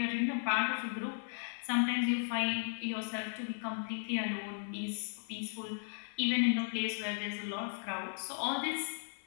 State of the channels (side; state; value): right; silent; 54 dB below the other